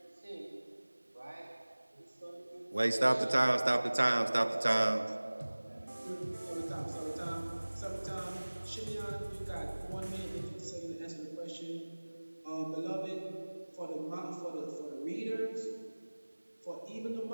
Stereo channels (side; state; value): both; inverted; correlation -1.00